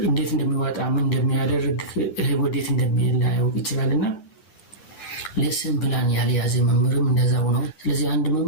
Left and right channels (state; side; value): late; right; 9.4 ms